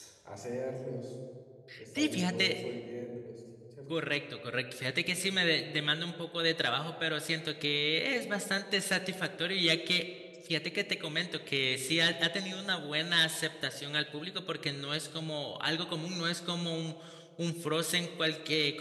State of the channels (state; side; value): identical; both; correlation 1.00